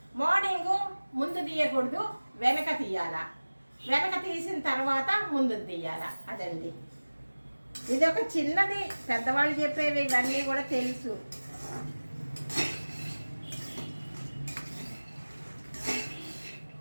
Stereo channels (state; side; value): inverted; both; correlation -1.00